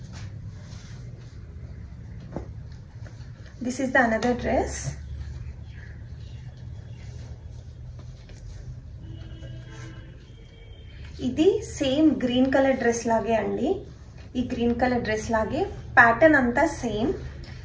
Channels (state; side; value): identical; both; correlation 1.00